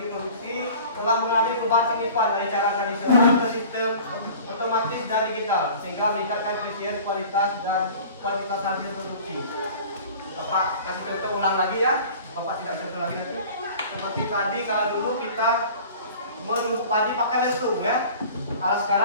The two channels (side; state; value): both; inverted; correlation -0.43